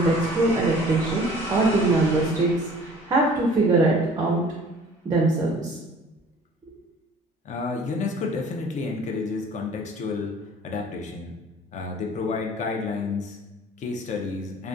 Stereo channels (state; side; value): normal; both; correlation 0.50